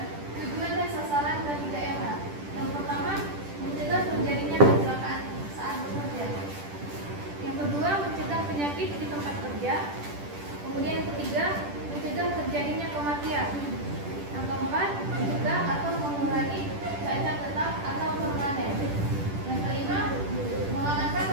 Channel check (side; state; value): left; late; 10 ms